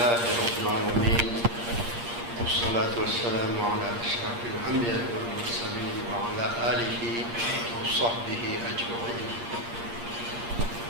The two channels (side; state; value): left; late; 8.6 ms